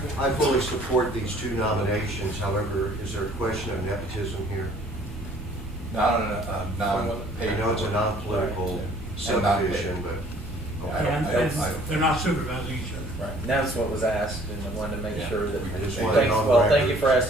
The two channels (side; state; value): both; normal; correlation 0.56